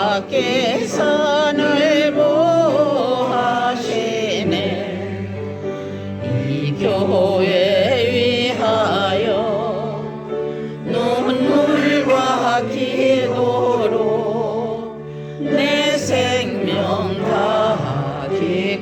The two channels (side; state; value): both; identical; correlation 1.00